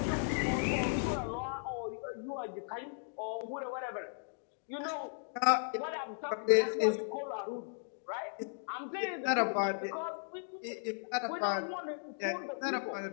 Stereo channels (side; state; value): right; silent; digital silence